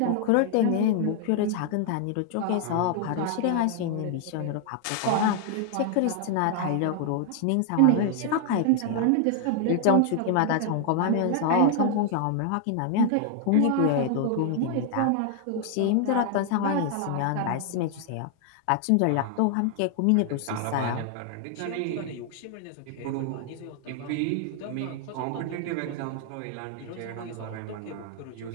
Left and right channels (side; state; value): both; different; correlation 0.00